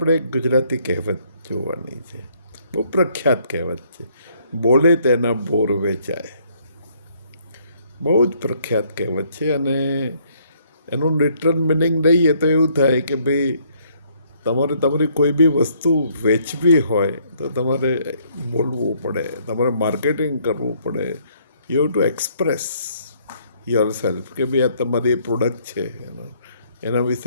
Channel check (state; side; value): inverted; both; correlation -0.66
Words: એક ગુજરાતી કહેવત જોવાની છે. બહુ પ્રખ્યાત કહેવત છે, બોલે તેના બોર વેચાય. બહુ જ પ્રખ્યાત કહેવત છે અને એનું લિટરલ મિનિંગ લઈએ તો એવું થાય કે ભાઈ તમારે તમારી કોઈ બી વસ્તુ વેચવી હોય તો તમારે બોલવું પડે, તમારે માર્કેટિંગ કરવું પડે. You have to express your self કે ભાઈ આ તમારી પ્રોડક્ટ છે, એના